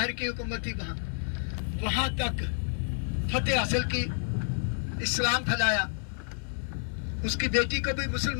की हुकूमत थी, वहां तक फतेह हासिल की, इस्लाम फैलाया। उसकी बेटी को भी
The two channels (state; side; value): silent; right; 58 dB below the other